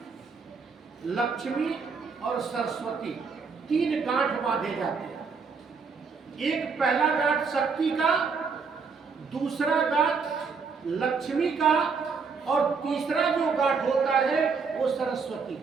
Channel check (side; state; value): left; quieter; 5.2 dB